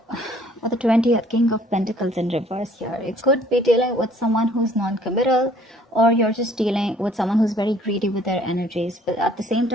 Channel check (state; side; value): normal; both; correlation 0.58